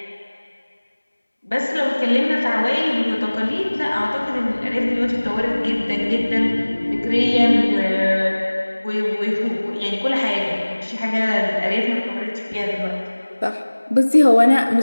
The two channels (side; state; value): both; inverted; correlation -1.00